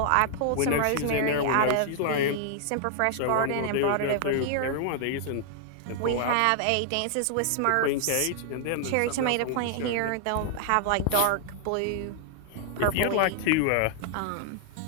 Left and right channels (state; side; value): different; both; correlation 0.00